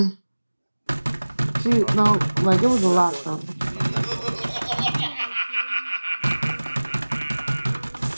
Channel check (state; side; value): inverted; both; correlation -1.00